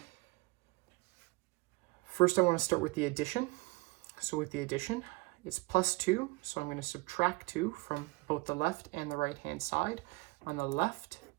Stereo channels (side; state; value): left; quieter; 24.2 dB